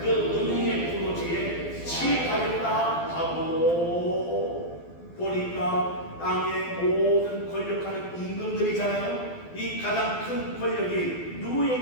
음행의 포도주에 취하였다 하고, 보니까 땅의 모든 권력하는 임금들이잖아요. 이 가장 큰 권력이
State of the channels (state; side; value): late; right; 12 ms